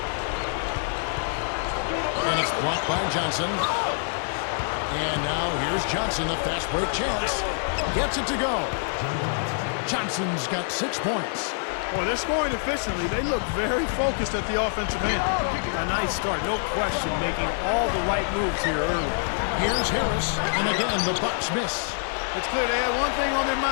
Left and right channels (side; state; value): right; silent; 61 dB below the other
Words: And it's blocked by Johnson. And now here's Johnson, the fast break chance. Gets it to go. Johnson's got 6 points. Boy, they're scoring efficiently. They look very focused at the offensive end. A nice start, no question, making all the right moves here early. Here's Harris, and again, the Bucks miss. It's clear they had one thing on their